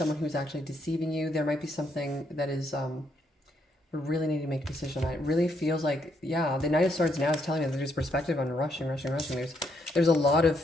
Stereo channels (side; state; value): both; normal; correlation 0.75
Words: who's actually deceiving you. There might be something that is, we really need to make a decision. It really feels like, yeah, the Knight of Swords now is telling me that there's perspective on rushing. There's a lot of